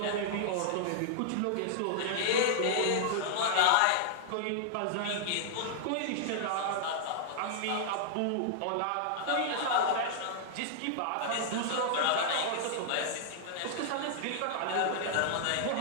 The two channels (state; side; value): different; both; correlation -0.01